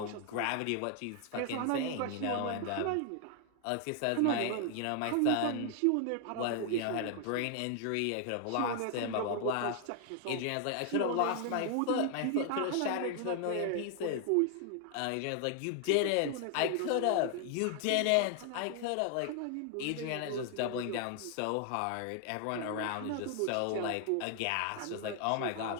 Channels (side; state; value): both; different; correlation 0.00